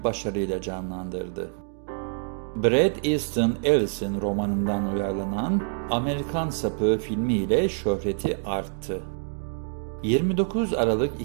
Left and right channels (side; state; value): left; silent; digital silence